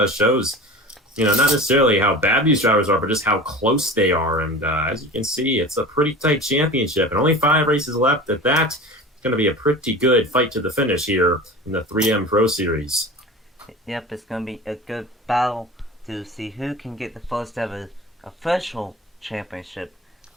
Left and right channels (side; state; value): both; normal; correlation 0.35